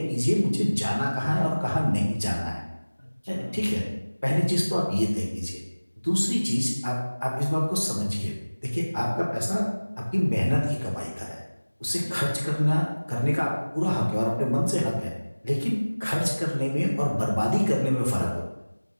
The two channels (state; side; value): inverted; both; correlation -1.00